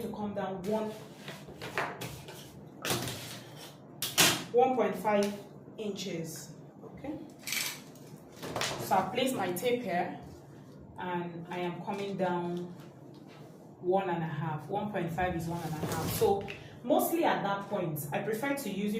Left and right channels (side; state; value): both; identical; correlation 1.00